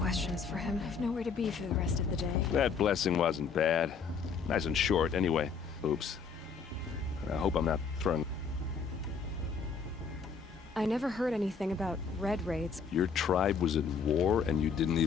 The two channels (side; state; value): right; quieter; 5.6 dB